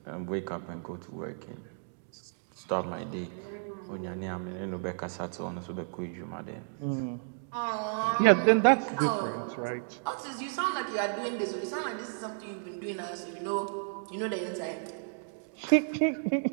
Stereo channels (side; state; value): left; silent; digital silence